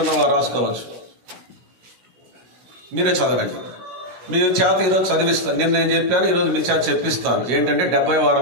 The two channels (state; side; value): late; left; 16 ms